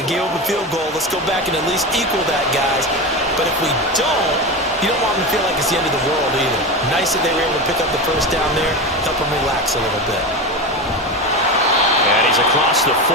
gave up a field goal. Let's go back and at least equal that, guys. But if we don't, you don't want them to feel like it's the end of the world either. Nice that they were able to pick up the first down there, help them relax a little bit. And he's across the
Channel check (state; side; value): normal; both; correlation 0.22